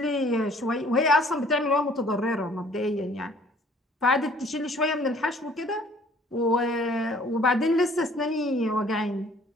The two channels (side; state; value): both; normal; correlation 0.56